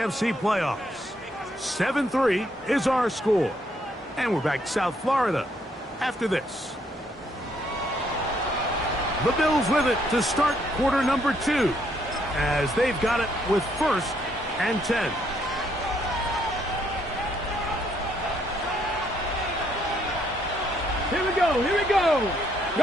playoffs. 7-3 is our score. And we're back to South Florida after this. The Bills with it to start quarter number 2 as they've got it with 1st and 10. Here we go, here we go.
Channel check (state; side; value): normal; both; correlation 0.71